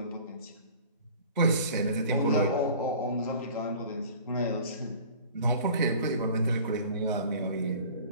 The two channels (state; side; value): inverted; both; correlation -0.45